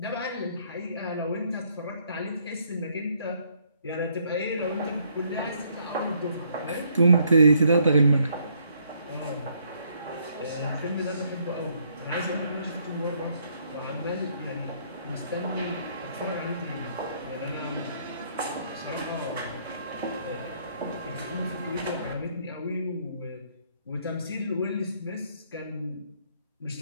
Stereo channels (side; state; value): both; inverted; correlation -0.69